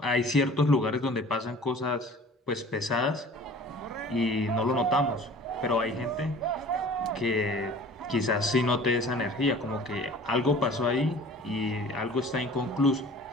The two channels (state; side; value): normal; both; correlation 0.45